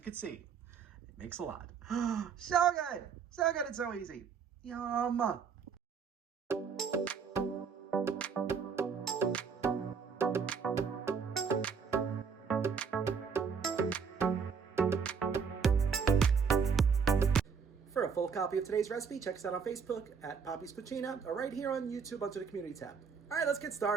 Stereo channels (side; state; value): left; quieter; 6.1 dB